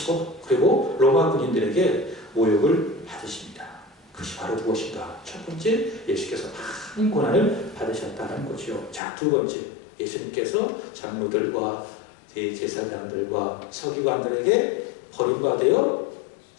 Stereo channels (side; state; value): right; drops out; at 9.0 s